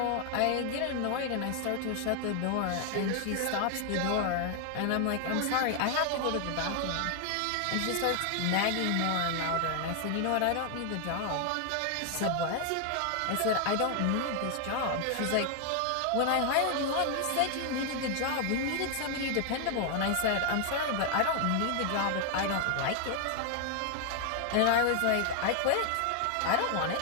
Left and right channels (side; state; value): both; different; correlation 0.00